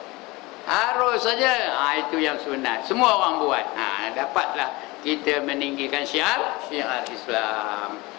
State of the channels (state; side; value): quieter; right; 22.7 dB